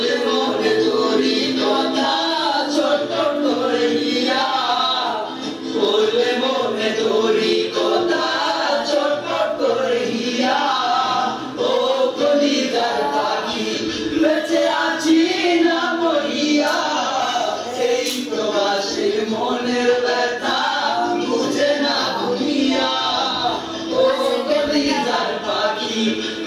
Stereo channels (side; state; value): both; identical; correlation 1.00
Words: মনে তোরি কথা ছোট করে হিয়া বললে মনে তোরি কথা ছোট করে হিয়া ও কলিজার পাখি বেঁচে আছি না মরিয়া এই প্রবাসীর মনের ব্যথা বুঝে না দুনিয়া ও কলিজার পাখি